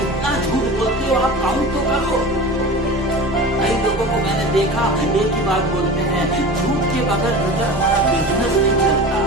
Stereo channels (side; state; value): both; normal; correlation 0.33